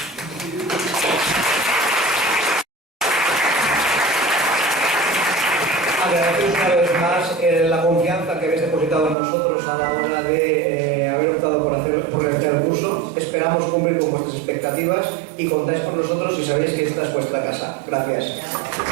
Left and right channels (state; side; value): drops out; left; at 9.2 s